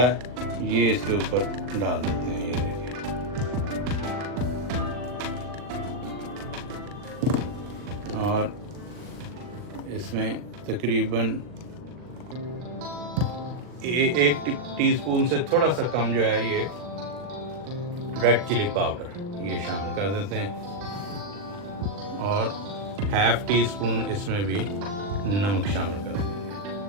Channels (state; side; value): late; left; 39 ms